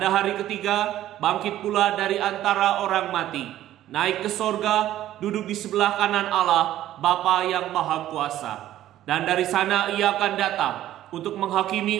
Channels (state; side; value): quieter; left; 13.1 dB